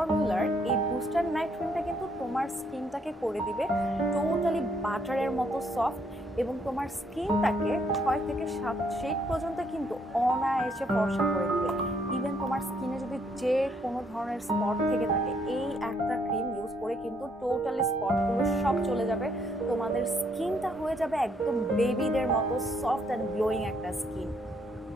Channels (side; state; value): both; normal; correlation 0.70